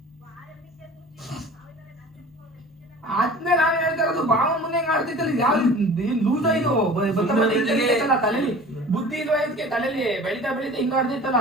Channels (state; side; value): normal; both; correlation 0.42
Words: ಆದ್ಮೇಲೆ ನಾನು ಹೇಳ್ತಾ ಇರೋದು, ಬಾವ ಮುಂದೆ ಹೆಂಗ್ ಆಡ್ತಿತ್ತಲ್ಲ, ಯಾವ ಲೂಸ್ ಆಯ್ತು ತಲೆಲಿ, ಬುದ್ಧಿ ಇಲ್ವಾ ಇದಕ್ಕೆ? ತಲೆಲಿ ಬೆಳಿತಾ ಹಿಂಗ ಆಡ್ತಿತ್ತಲ್ಲ.